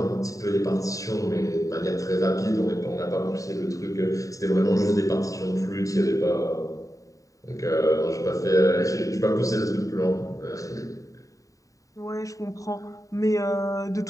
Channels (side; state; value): right; late; 0.16 ms